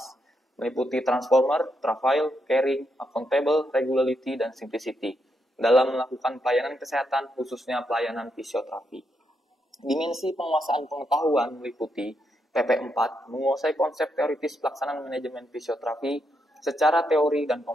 meliputi transformer, travail, caring, accountable, regularity, dan simplicity, dalam melakukan pelayanan kesehatan, khususnya pelayanan fisioterapi. Dimensi penguasaan pengetahuan meliputi PP4 menguasai konsep teoritis pelaksanaan manajemen fisioterapi secara teori dan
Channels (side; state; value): both; normal; correlation 0.81